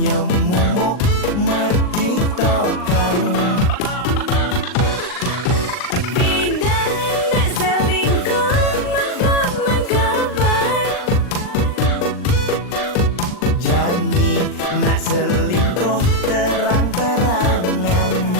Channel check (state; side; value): late; right; 39 ms